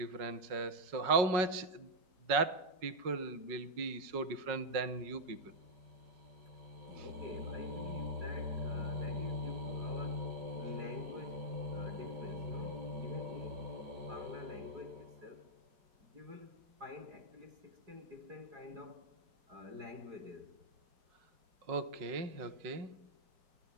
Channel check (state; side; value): late; left; 5.4 ms